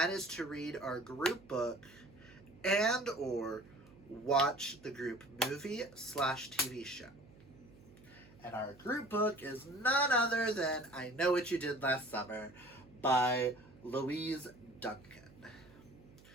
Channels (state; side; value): noise; right; hum, 23 dB below the sound